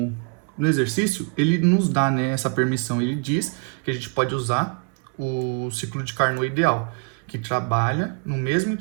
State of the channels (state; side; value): quieter; left; 36.9 dB